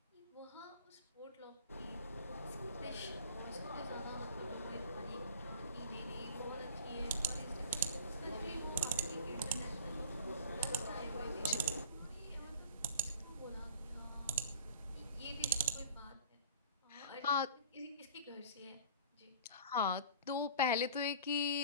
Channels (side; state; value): both; inverted; correlation -0.41